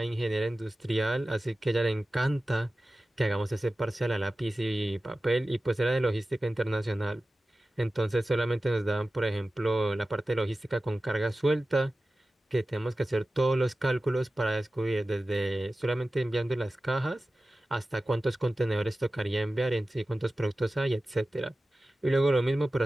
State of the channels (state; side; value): normal; both; correlation 0.95